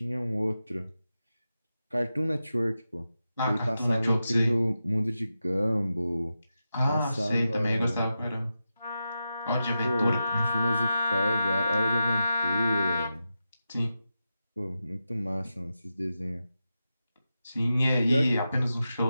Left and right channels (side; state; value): both; inverted; correlation -0.90